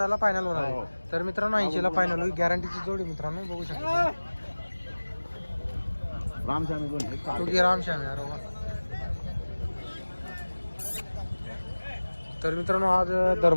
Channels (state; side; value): inverted; both; correlation -1.00